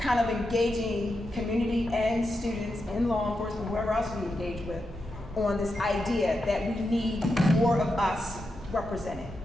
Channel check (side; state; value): both; normal; correlation 0.87